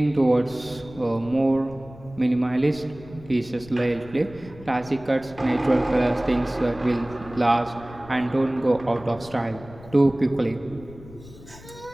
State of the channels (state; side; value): noise; left; rumble, 19 dB below the sound